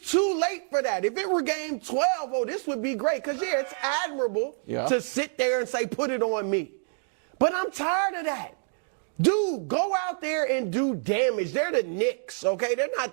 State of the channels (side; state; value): left; silent; 58 dB below the other